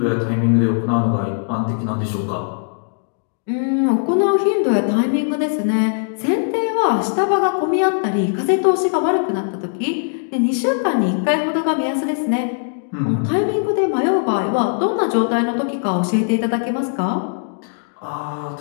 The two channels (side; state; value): right; silent; digital silence